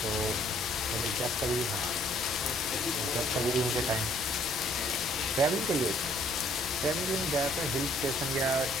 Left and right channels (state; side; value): normal; both; correlation 0.62